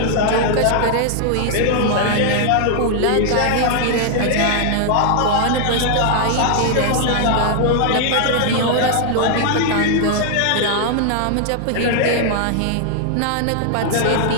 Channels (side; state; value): both; different; correlation 0.00